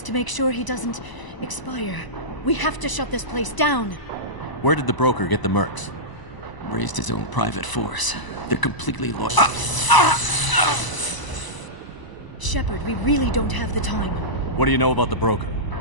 to make sure he doesn't expire. We have to shut this place down. Where did the broker get the mercs? Raised his own private force. They're completely loyal. Shepard, we really don't have the time. What do you know about the broker?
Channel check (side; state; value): right; late; 1.0 ms